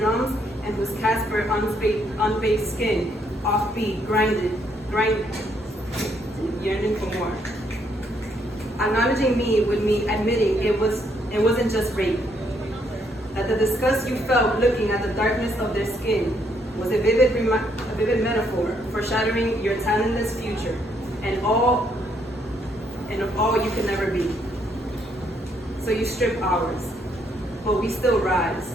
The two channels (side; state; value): both; normal; correlation 0.72